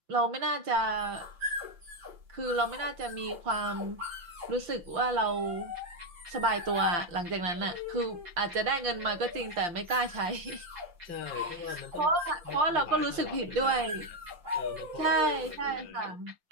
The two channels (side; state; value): left; late; 5.8 ms